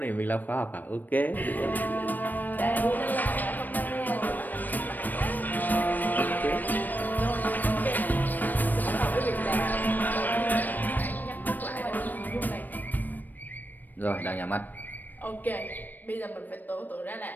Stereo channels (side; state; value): right; late; 0.088 ms